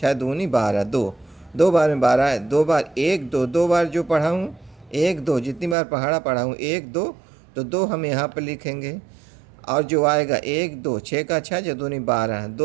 दूनी 12, 2, 2 बार में 12 है, 2 बार 1 2, 2 बार जो पढ़ा हूँ 1 2, जितनी बार पहाड़ा पढ़ा हूँ 1 2, तो 2 हम यहाँ पर लिखेंगे। और जो आएगा 1 2, 6 का 6, 6 दूनी 12,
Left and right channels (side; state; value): left; drops out; at 5.8 s